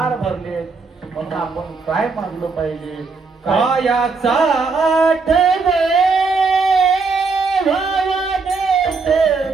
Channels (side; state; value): left; quieter; 4.4 dB